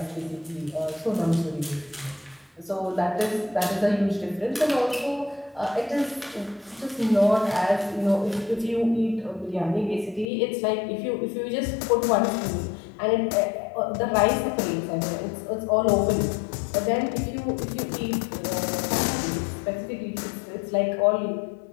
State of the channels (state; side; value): drops out; right; at 10.2 s